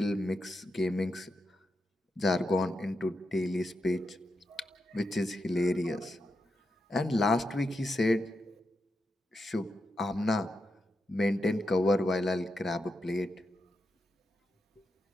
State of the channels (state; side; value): normal; both; correlation 0.86